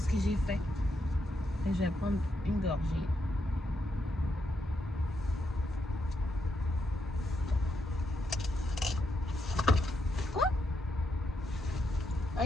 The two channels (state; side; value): normal; both; correlation 0.81